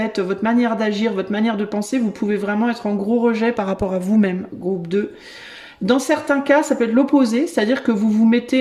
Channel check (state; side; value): identical; both; correlation 1.00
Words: votre manière d'agir, votre manière de penser. Vous pouvez vraiment être en gros rejet par rapport à vous-même, groupe 2. Dans certains cas, ça peut être l'opposé, c'est-à-dire que vous vous